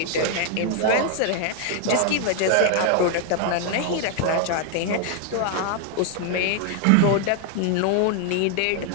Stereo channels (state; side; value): different; both; correlation 0.00